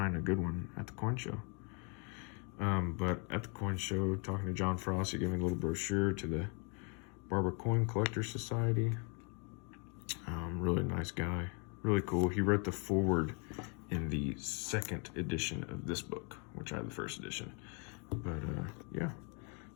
a good one at the coin show. But at the coin show, talking to John Frost, he gave me a little brochure to the Barber Coin Collector Society. Really nice guy, really cool. He wrote the foreword in the second edition of this book, which I had the first edition. But yeah,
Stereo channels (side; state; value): right; quieter; 36.4 dB